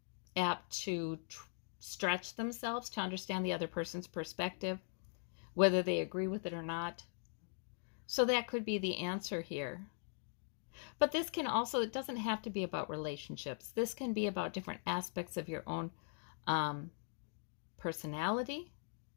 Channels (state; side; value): silent; right; 51 dB below the other